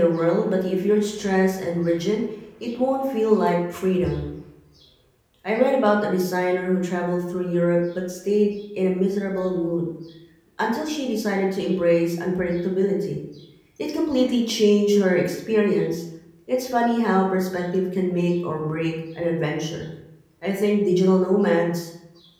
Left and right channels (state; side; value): identical; both; correlation 1.00